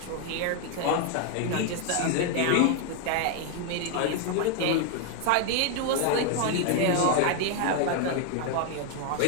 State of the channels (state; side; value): different; both; correlation 0.01